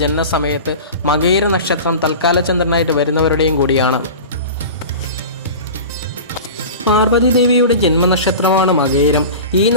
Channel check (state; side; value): inverted; both; correlation -0.33